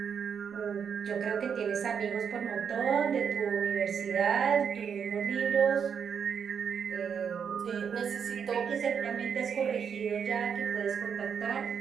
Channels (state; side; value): quieter; left; 7.1 dB